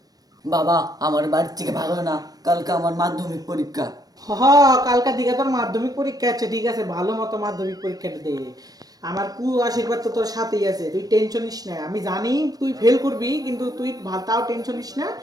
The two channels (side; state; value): left; late; 0.18 ms